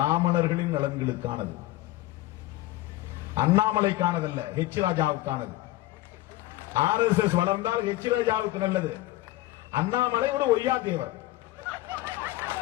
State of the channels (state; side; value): quieter; right; 16.5 dB